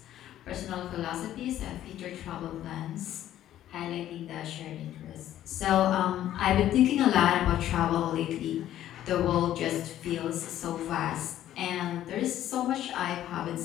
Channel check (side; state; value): right; quieter; 12.3 dB